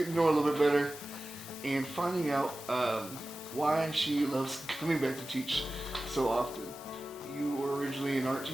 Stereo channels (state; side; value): normal; both; correlation 0.95